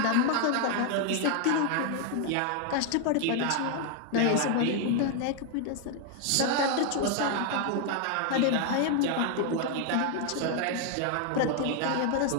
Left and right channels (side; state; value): both; different; correlation 0.00